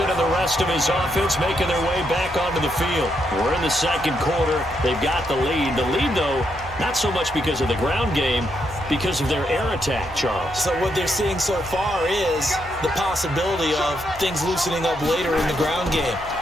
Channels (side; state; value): left; noise; hum, 18 dB below the sound